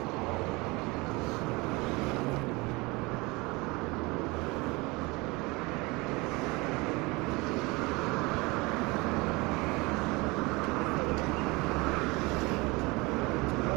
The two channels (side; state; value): left; quieter; 24.5 dB